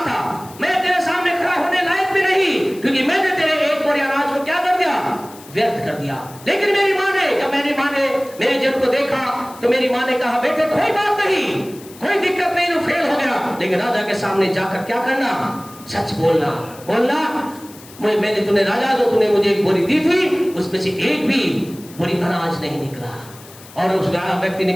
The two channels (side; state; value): left; noise; hiss, 21 dB below the sound